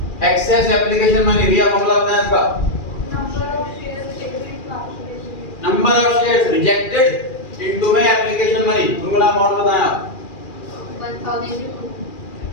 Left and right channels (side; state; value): right; late; 2.4 ms